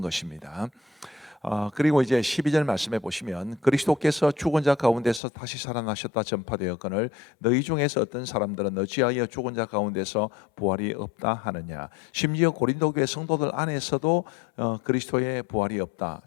그리고 이제 12절 말씀에 보시면 그리스도께서 죽은 자 가운데서 다시 살아나셨다 전파되었거늘 너희 중에서 어떤 사람들은 어찌하여 죽은 자 가운데서 부활이 없다 하느냐. 심지어 고린도 교회 성도들 안에서도 그리스도의 부활이 없다,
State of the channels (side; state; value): right; drops out; at 5.2 s